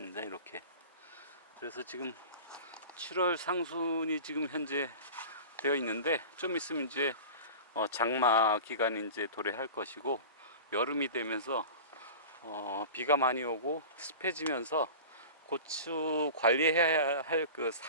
이렇게. 그래서 지금 7월 상순이 지금 현재 되어 있는데, 좀 있으면 이제 장마 기간이 이제 도래할 것이고, 여름이 되면서 비가 많이 오고 습해지면서 고추 관리해야 할 그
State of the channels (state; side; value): inverted; both; correlation -0.34